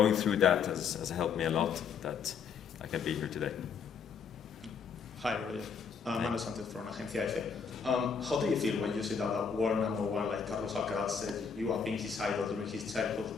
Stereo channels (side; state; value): right; quieter; 6.3 dB